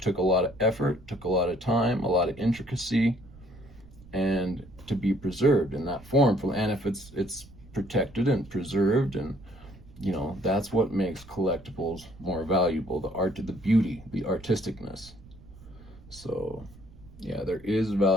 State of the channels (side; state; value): right; noise; rumble, 21 dB below the sound